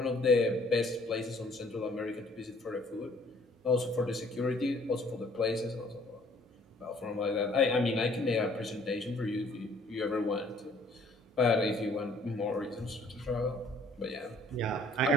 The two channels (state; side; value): normal; both; correlation 0.58